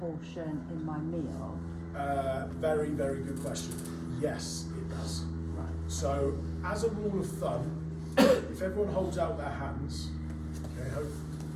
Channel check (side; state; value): both; identical; correlation 1.00